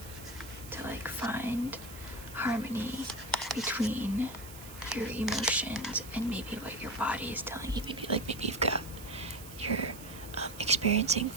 to like find harmony between your emotions and maybe what your body is telling you. Maybe you've got, you're experiencing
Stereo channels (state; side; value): noise; right; hiss, 15 dB below the sound